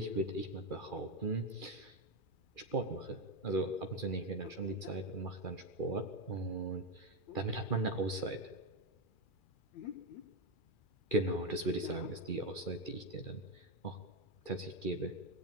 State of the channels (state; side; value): late; right; 2.4 ms